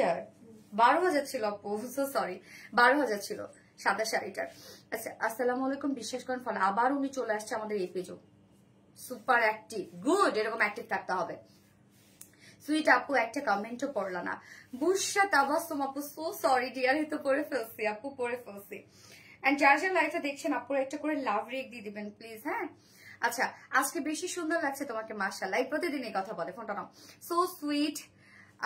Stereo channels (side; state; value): both; identical; correlation 1.00